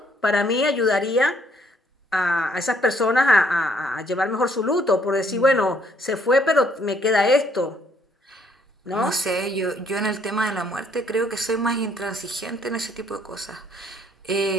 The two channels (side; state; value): both; normal; correlation 0.66